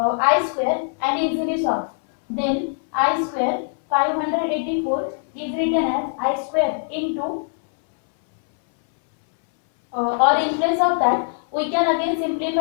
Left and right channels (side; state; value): right; silent; 64 dB below the other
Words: square and easily solve. Then I square 584 is written as I square into, or in place of that we can again